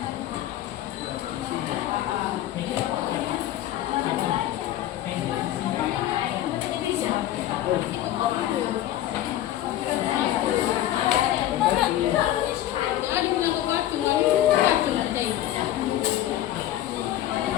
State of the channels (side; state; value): right; quieter; 13.2 dB